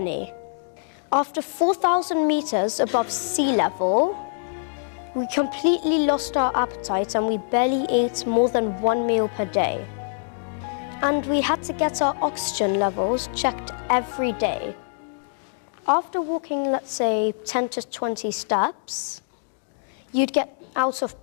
After 4,000 meters above sea level, we completely lost our appetite and we barely ate more than 1 meal per day. And we had to get our oxygen levels checked every day. After walking, let's say, 10 to 20 steps, you'd get out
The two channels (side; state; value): right; silent; digital silence